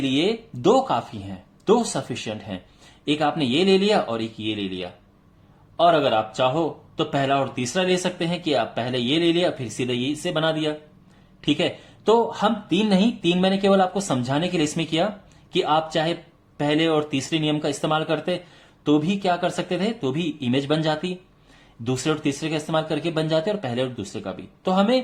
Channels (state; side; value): identical; both; correlation 1.00